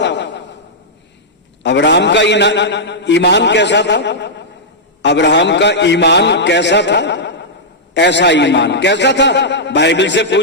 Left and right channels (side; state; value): both; normal; correlation -0.09